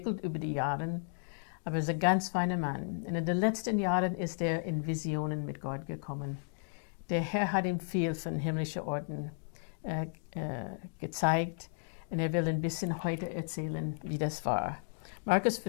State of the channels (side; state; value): right; silent; digital silence